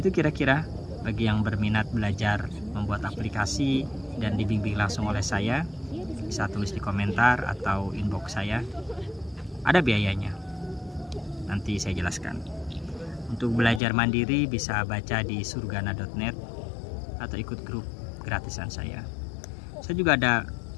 kira-kira bagi yang berminat belajar membuat aplikasi dan dibimbing langsung oleh saya, bisa tulis di komentar atau inbox saya. Ada biayanya, nanti saya jelaskan. Untuk belajar mandiri bisa baca di surgana.net atau ikut grup gratisan saya. Saya juga ada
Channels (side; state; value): right; drops out; at 13.8 s